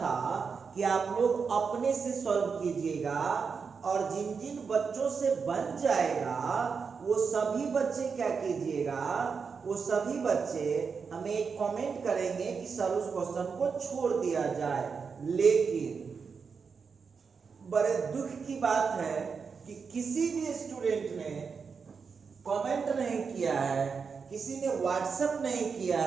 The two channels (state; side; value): quieter; left; 5.6 dB